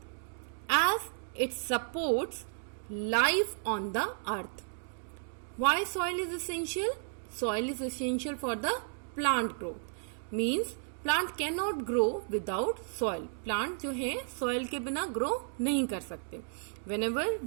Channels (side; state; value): left; silent; 56 dB below the other